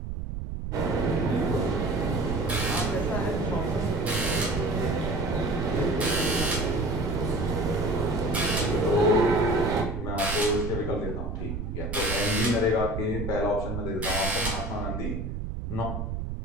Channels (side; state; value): right; noise; rumble, 4 dB below the sound